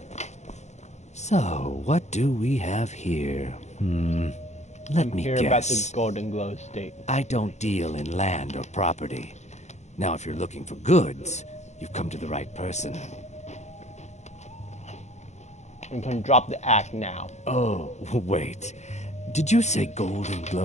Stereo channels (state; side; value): late; right; 0.33 ms